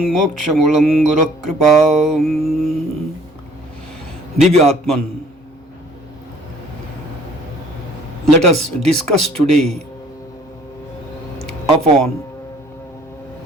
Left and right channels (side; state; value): both; normal; correlation 0.56